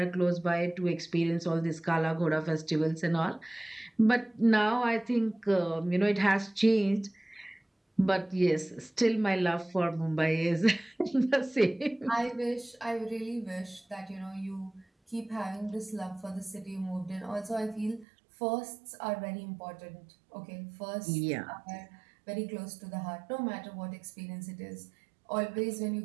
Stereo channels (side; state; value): left; drops out; at 18.1 s